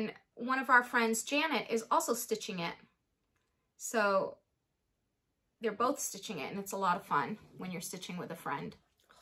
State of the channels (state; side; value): identical; both; correlation 1.00